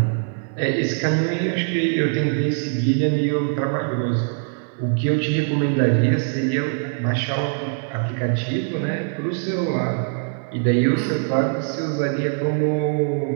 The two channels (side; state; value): left; silent; 64 dB below the other